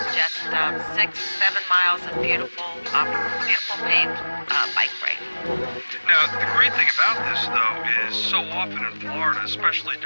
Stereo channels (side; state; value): both; inverted; correlation -1.00